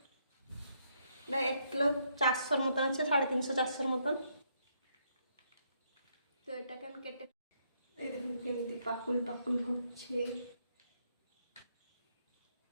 1 কিলো 400 মতন আছে, 350-400 মতন। তো এটাকে আমি কেটে, এই দেখুন কেমনি পাকুল পাকুল হচ্ছে,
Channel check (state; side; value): inverted; both; correlation -0.74